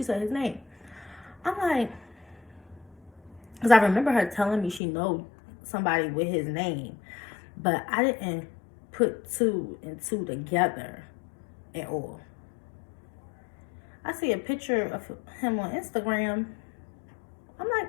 said his name. I'm like, because I remember her telling me she know somebody with his name, but I didn't put 2 and 2 together at all. I see a picture of him on Instagram. I'm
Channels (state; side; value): drops out; right; at 4.8 s